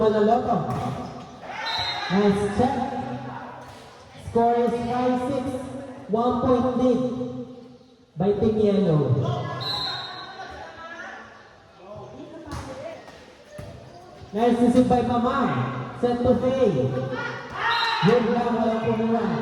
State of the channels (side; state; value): both; identical; correlation 1.00